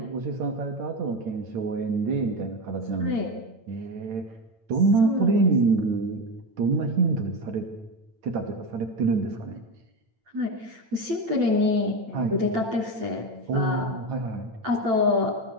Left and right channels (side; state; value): left; late; 8.9 ms